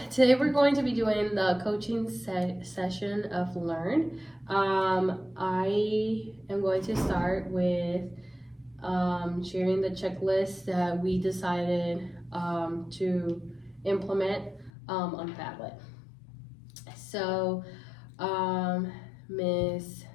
today we're going to be doing the coaching session of Learn. I am going to start with sharing the checklist that we decided to implement on Padlet. So, Ms.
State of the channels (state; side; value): drops out; right; at 14.7 s